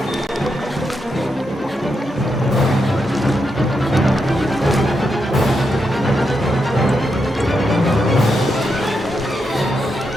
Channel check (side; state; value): both; normal; correlation 0.84